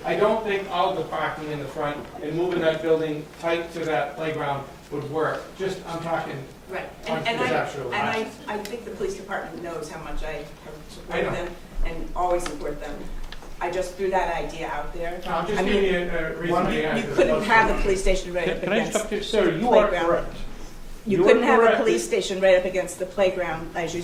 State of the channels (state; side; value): identical; both; correlation 1.00